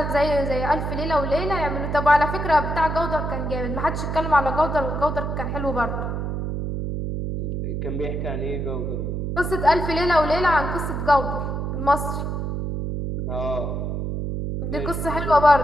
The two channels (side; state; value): right; noise; hum, 3 dB below the sound